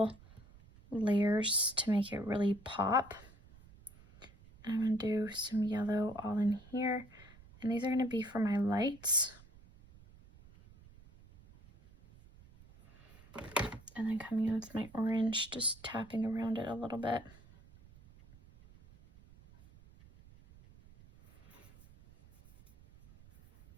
layers to make it really pop. I'm going to do some yellow all in here. And these are going to be for my lights. And then coming in with my orange, just tapping around it a little bit.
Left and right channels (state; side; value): noise; right; rumble, 23 dB below the sound